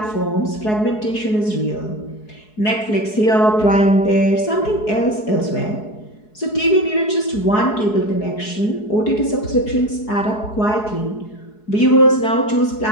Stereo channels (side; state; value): right; late; 4.7 ms